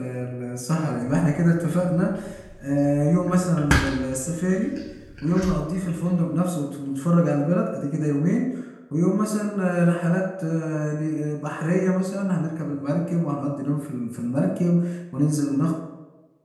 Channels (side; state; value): both; identical; correlation 1.00